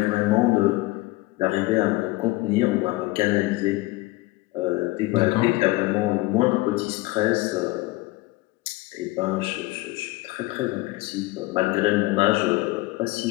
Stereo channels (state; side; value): quieter; right; 20.9 dB